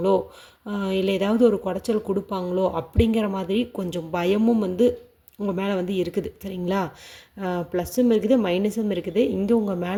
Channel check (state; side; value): identical; both; correlation 1.00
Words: இல்லை ஏதாவது ஒரு குடைச்சல் கொடுப்பாங்களோ அப்படிங்கிற மாதிரி கொஞ்சம் பயமும் வந்து உங்கள் மேலே வந்து இருக்குது. சரிங்களா? ப்ளஸ்ஸும் இருக்குது, மைனஸும் இருக்குது. இங்கே உங்கள்